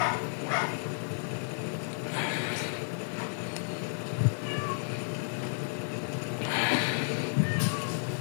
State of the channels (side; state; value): right; silent; 56 dB below the other